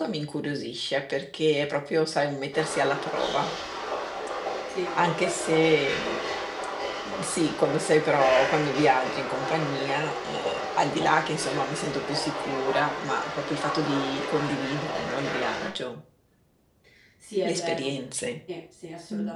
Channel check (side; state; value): both; identical; correlation 1.00